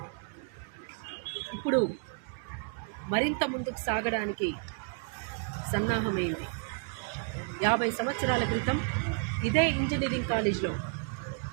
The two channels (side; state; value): left; quieter; 39.5 dB